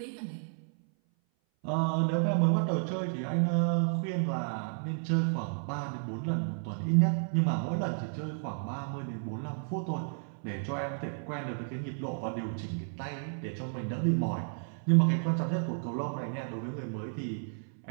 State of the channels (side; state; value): left; silent; 56 dB below the other